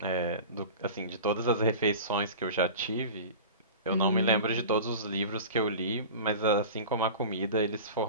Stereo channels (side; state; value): both; inverted; correlation -0.35